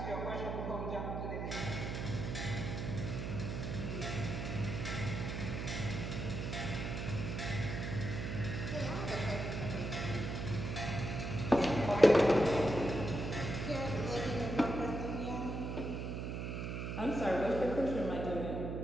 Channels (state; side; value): noise; right; hum, 4 dB below the sound